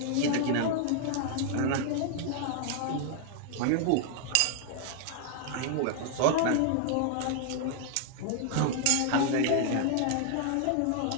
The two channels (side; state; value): both; different; correlation 0.00